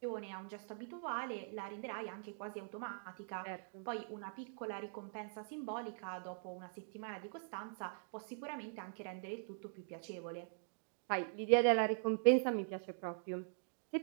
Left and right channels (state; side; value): silent; left; digital silence